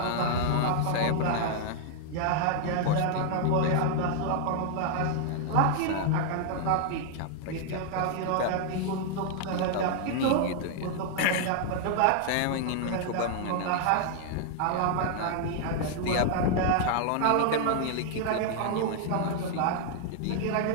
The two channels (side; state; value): both; different; correlation 0.00